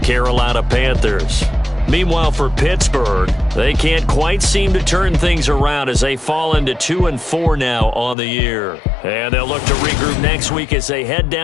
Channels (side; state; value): right; drops out; at 8.2 s